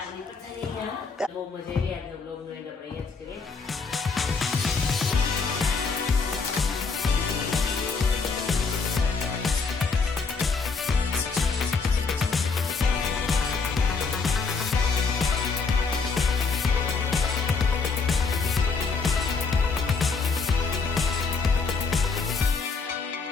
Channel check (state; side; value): quieter; right; 4.7 dB